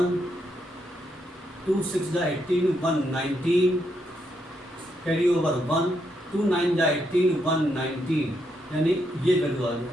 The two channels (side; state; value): both; normal; correlation 0.79